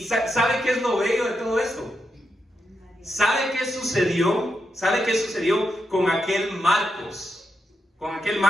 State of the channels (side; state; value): both; normal; correlation 0.84